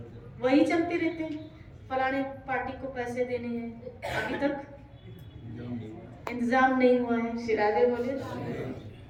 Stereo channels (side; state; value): both; identical; correlation 1.00